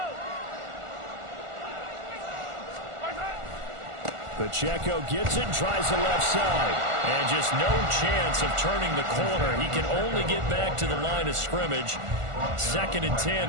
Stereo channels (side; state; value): left; late; 1.4 ms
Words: Pacheco gets it, tries the left side, and just no chance of turning the corner. He can only get back to the line of scrimmage. 2nd and